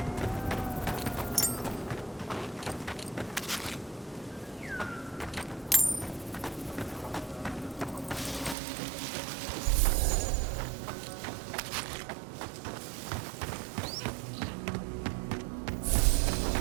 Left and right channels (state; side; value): drops out; left; at 8.6 s